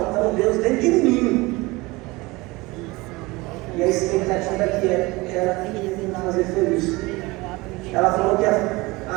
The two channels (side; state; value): left; quieter; 22.6 dB